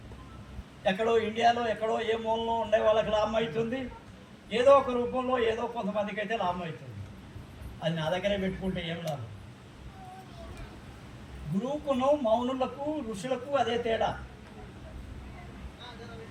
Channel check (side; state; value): both; identical; correlation 1.00